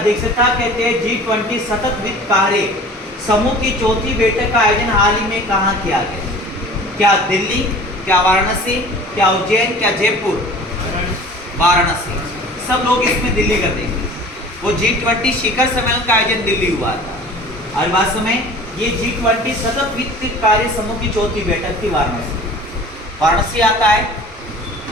कहते हैं G20 सतत वित्त कार्य समूह की चौथी बैठक का आयोजन हाल ही में कहाँ किया गया? क्या दिल्ली, क्या वाराणसी, क्या उज्जैन, क्या जयपुर? वाराणसी। सब लोग इसमें दिल्ली कर देंगे। वो G20 शिखर सम्मेलन का आयोजन दिल्ली हुआ था। और वास्तव में ये G20 सतत वित्त कार्य समूह की चौथी बैठक थी वाराणसी। वाराणसी आता है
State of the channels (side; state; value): both; normal; correlation 0.43